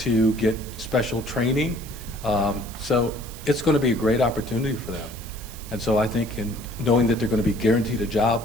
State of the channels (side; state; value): right; noise; hiss, 16 dB below the sound